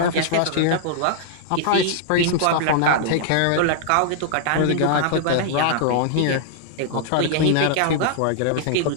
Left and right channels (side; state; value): both; different; correlation -0.01